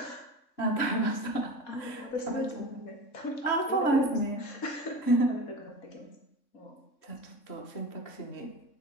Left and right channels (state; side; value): late; right; 3.6 ms